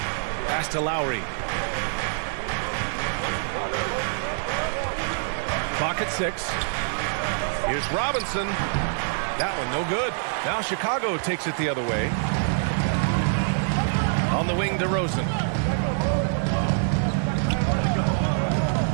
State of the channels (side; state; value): left; silent; digital silence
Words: Pass to Lowry. Clock at 6. Here's Robinson. That one no good. Now Chicago takes it the other way. On the wing, DeRozan.